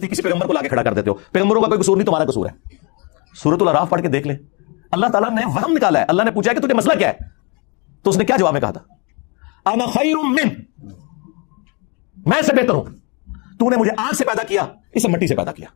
کسی پیغمبر کو لا کے کھڑا کر دیتے ہو۔ پیغمبروں کا کوئی قصور نہیں، تمہارا قصور ہے۔ سورۃ الاعراف پڑھ کے دیکھ لیں، اللہ تعالیٰ نے وہم نکالا ہے. اللہ نے پوچھا کہ تجھے مسئلہ کیا ہے, تو اس نے کیا جواب میں کہا تھا؟ انا خیر من, میں سے بہتر ہوں. تو نے مجھے آگ سے پیدا کیا, اسے مٹی سے پیدا کیا.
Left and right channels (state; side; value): quieter; right; 31.4 dB